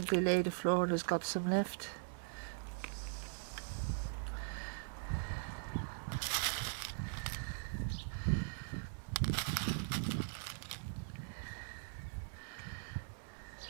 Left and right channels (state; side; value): silent; left; digital silence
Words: laid a floor and has got some left.